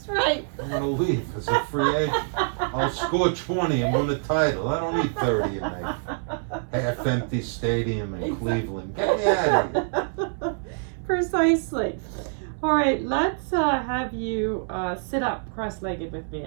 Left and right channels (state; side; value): silent; left; 61 dB below the other